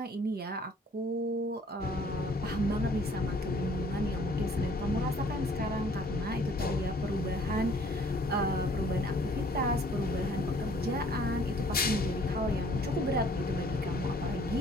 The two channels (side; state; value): both; normal; correlation 0.57